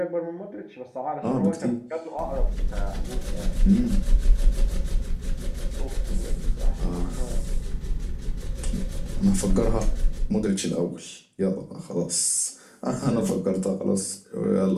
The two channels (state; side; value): identical; both; correlation 1.00